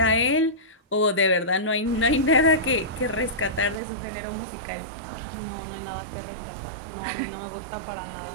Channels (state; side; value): drops out; left; at 3.8 s